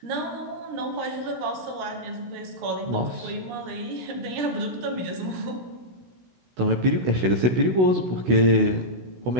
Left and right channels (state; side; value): late; left; 16 ms